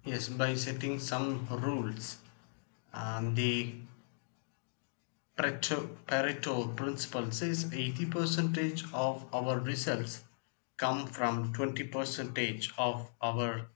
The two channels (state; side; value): silent; right; digital silence